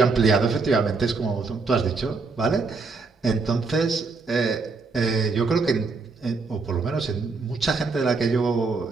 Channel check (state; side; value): quieter; left; 4.3 dB